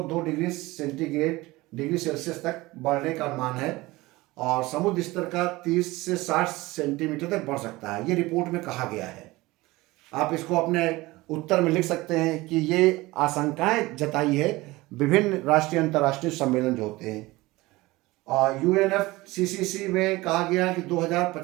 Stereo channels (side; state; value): left; quieter; 20.3 dB